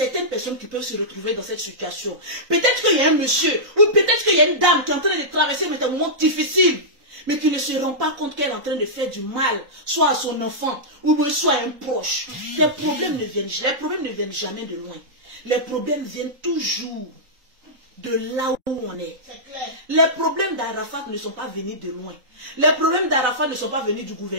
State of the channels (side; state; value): left; late; 3.8 ms